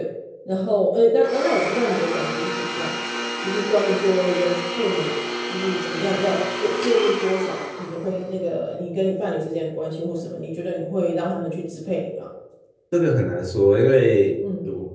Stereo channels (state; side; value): identical; both; correlation 1.00